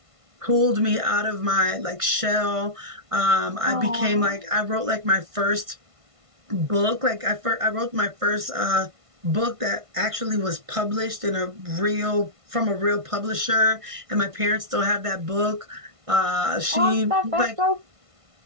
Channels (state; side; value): late; left; 1.5 ms